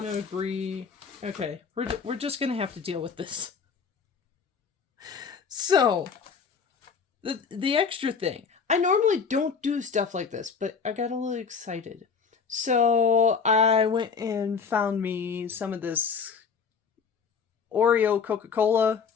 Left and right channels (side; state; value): right; quieter; 5.9 dB